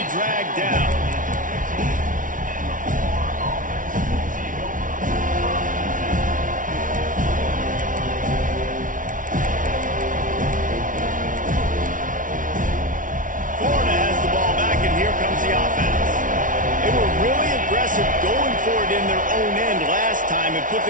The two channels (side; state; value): left; late; 0.38 ms